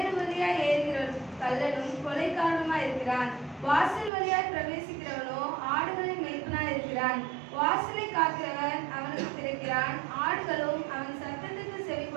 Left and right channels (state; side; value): drops out; left; at 4.1 s